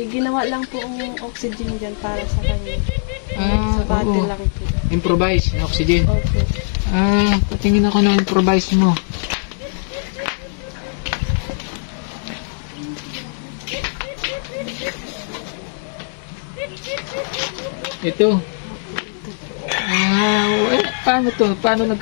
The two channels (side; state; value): right; silent; digital silence